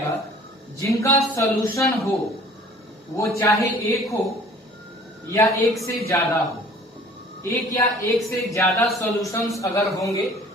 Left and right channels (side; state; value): both; normal; correlation 0.50